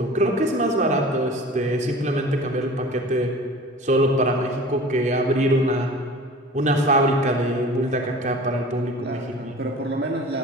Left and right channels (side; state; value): both; normal; correlation 0.41